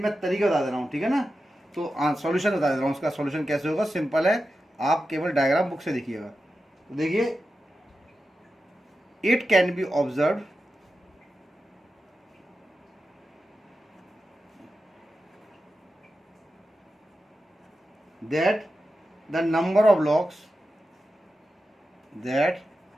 मैं तरीका बता दे रहा हूँ, ठीक है ना। तो सॉल्यूशन बता दे रहा हूँ, उसका सॉल्यूशन कैसे होगा, सिंपल है, आप केवल डायग्राम बुक से देखिएगा। तो देखिए it can be observe that the number of logs that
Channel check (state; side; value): normal; both; correlation 0.91